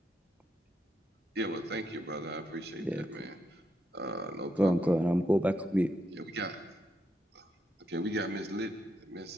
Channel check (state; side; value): normal; both; correlation 0.80